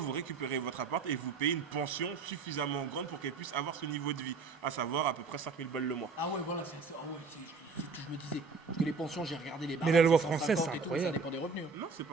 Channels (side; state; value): left; quieter; 4.6 dB